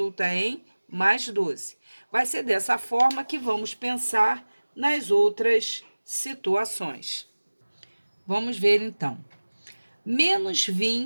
em mais 12. Vai ser dessa forma que vamos pensar nas outras situações. Vamos ver então. Menos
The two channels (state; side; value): inverted; both; correlation -1.00